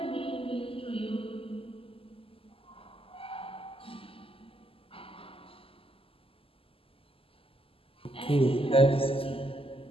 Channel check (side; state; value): right; late; 0.26 ms